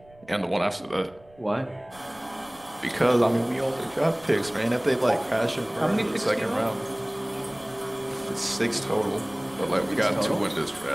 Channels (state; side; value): noise; right; rumble, 27 dB below the sound